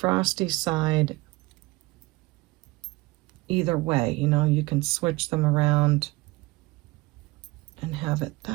side either way. You know, you can switch them around and have it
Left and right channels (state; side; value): quieter; left; 21.9 dB